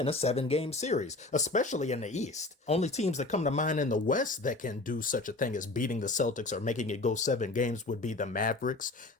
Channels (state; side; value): quieter; right; 3.1 dB